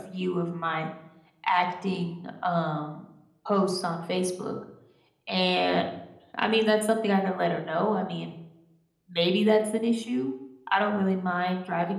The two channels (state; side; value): identical; both; correlation 1.00